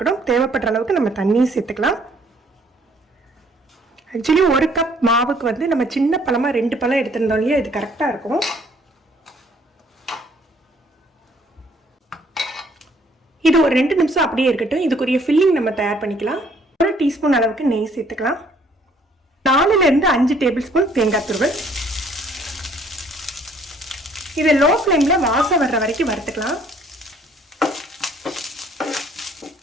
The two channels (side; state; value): both; normal; correlation 0.61